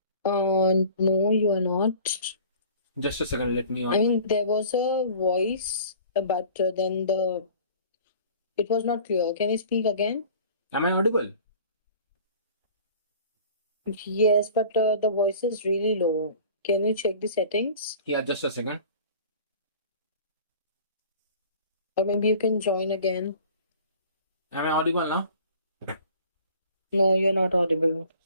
No, you are not. Just a second. Let me I on. mean, there was a voice, but then the it was not clear. Can you speak again? Am I audible? Yes, but the voice is really low. Can you check the settings? Yeah, just a second. Or maybe you can join again. Am I audible now? No, you're not audible.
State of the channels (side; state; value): both; inverted; correlation -0.46